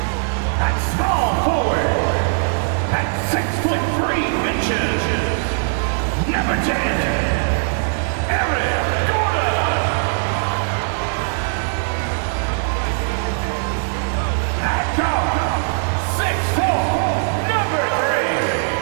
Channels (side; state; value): left; silent; digital silence